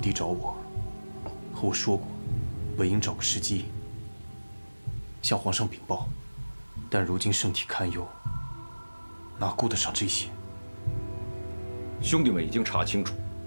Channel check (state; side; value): inverted; both; correlation -1.00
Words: 找我，和我说过，本应找个时机向皇上禀报，但如今圣体堪忧，哪顾得上这些？兄弟们已经查清楚